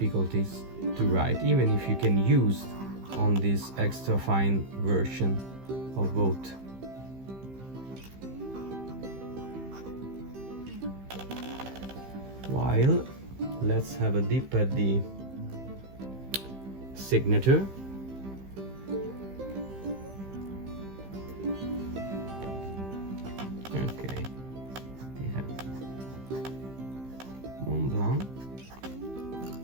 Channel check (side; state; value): left; late; 15 ms